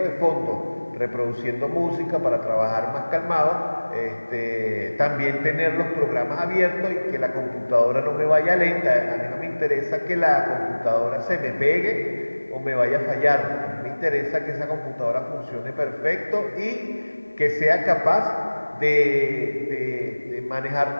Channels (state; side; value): inverted; both; correlation -1.00